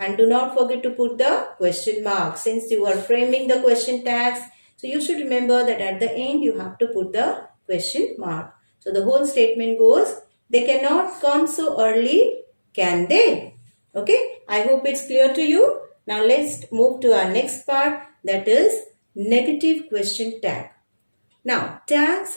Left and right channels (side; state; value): both; inverted; correlation -1.00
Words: do not forget to put the question mark. Since you are framing the question tags, so you should remember that at the end you have to put the question mark. So the whole statement goes, they cannot come so early, can they? Okay, I hope it's clear to you. Now let's move to our next part, that is negative question tag. Now